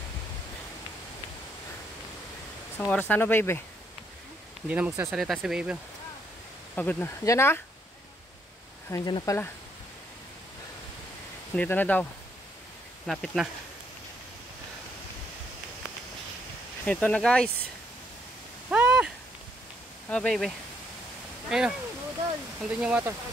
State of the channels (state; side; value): normal; both; correlation 0.73